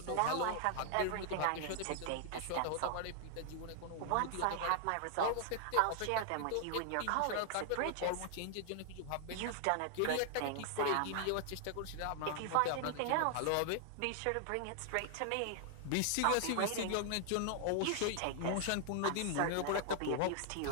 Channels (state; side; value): different; both; correlation 0.00